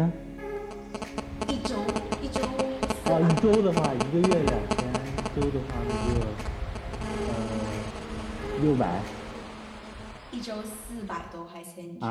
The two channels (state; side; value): identical; both; correlation 1.00